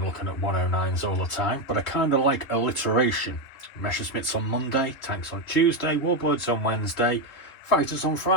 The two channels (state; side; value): late; right; 3.5 ms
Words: looking at 109s all the time, but I kind of like alliteration. Messerschmitts on Monday, tanks on Tuesday, warbirds on Wednesday, fighters on